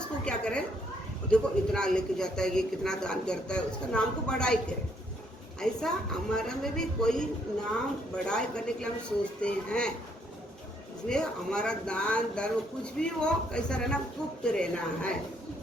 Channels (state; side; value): normal; both; correlation 0.70